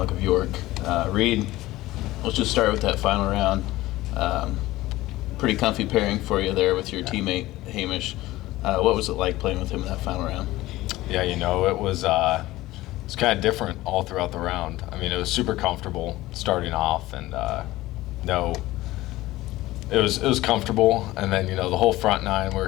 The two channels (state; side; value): quieter; right; 17.4 dB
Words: of York. Reed, let's just start with that final round. Pretty comfy pairing for you there with your teammate Hamish. What was it like playing with him in that final round? Yeah, it was kind of different all throughout the round. I mean, it was super comfortable starting off, and it was comfortable. And then the whole front nine, we were